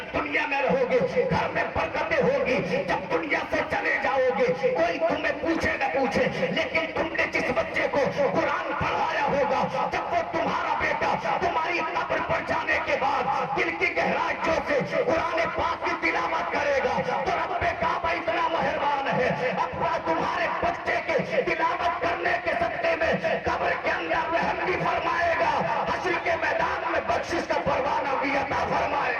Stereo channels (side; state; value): both; identical; correlation 1.00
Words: दुनिया में रहोगे घर में बरकतें होगी। जब दुनिया से चले जाओगे कोई तुम्हें पूछे न पूछे, लेकिन तुमने जिस बच्चे को कुरान पढ़ाया होगा जब वो तुम्हारा बेटा तुम्हारी कब्र पर जाने के बाद दिल की गहराइयों से कुरान पाक की तिलावत करेगा तो रब्बे काबा इतना मेहरबान है, अपना तुम्हारे बच्चे के तिलावत करने के सत्ते में कब्र के अंदर रहम भी फरमाएगा, हश्र के मैदान में बख्शिश का परवाना भी अता